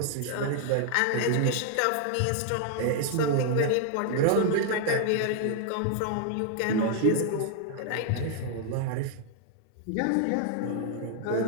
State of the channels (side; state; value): both; different; correlation 0.00